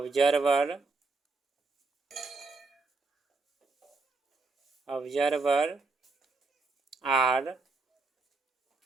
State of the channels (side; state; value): left; quieter; 3.7 dB